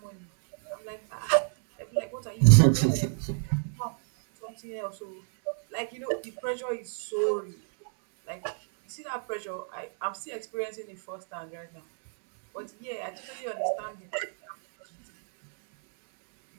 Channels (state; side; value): silent; left; digital silence